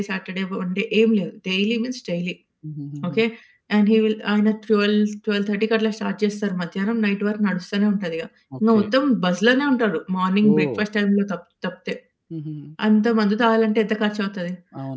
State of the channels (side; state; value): both; identical; correlation 1.00